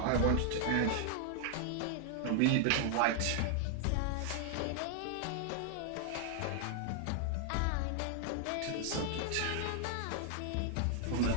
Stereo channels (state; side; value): different; both; correlation 0.00